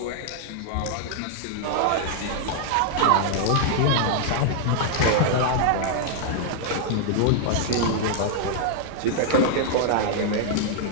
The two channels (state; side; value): different; both; correlation 0.00